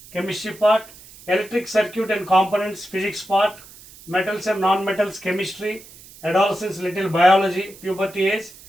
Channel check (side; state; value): right; noise; hiss, 21 dB below the sound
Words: chemistry part, electric circuit and components physics part, metals and non metals chemistry, adolescence little biology puberty age